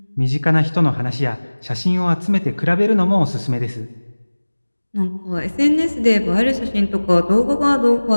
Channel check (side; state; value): both; inverted; correlation -1.00